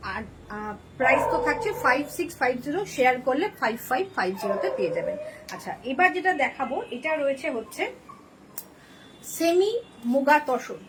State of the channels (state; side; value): identical; both; correlation 1.00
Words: আর প্রাইস তো থাকছে 5650, শেয়ার করলে 5550-তে পেয়ে যাবেন। আচ্ছা, এবার যেটা দেখাবো এটা রয়েছে হচ্ছে semi muga tussar.